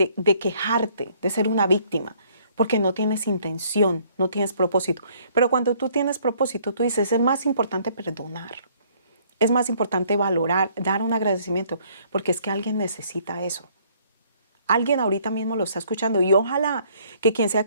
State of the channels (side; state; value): both; inverted; correlation -0.62